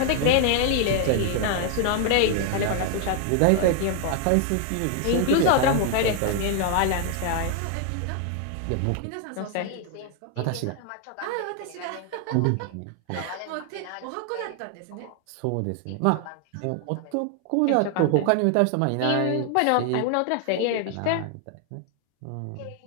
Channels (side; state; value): both; different; correlation 0.00